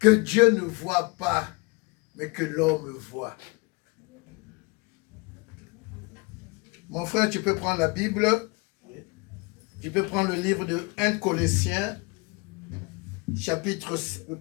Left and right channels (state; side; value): quieter; right; 27.5 dB